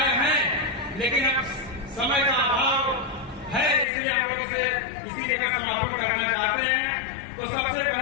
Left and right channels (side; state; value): right; drops out; at 3.9 s